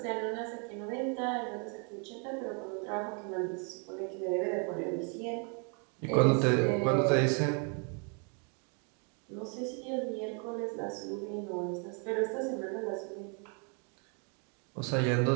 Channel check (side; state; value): left; quieter; 37.6 dB